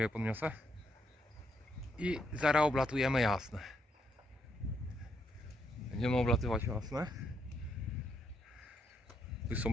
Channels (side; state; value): both; normal; correlation 0.75